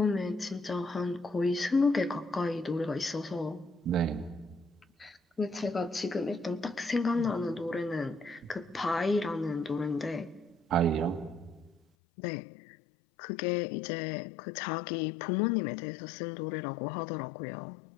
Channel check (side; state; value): right; drops out; at 11.8 s